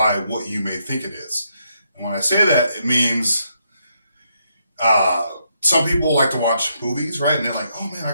what you may think it is. And when I say that, it means uh, some people like to watch movies, right? And they're like, oh man, I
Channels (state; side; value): inverted; both; correlation -0.77